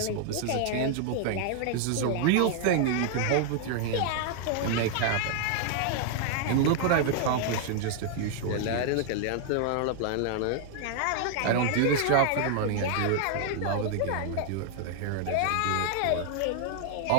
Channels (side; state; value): both; different; correlation 0.00